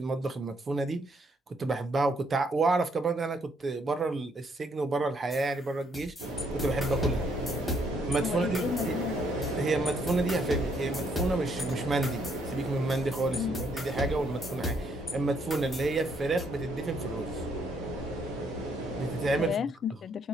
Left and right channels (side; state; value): both; normal; correlation 0.71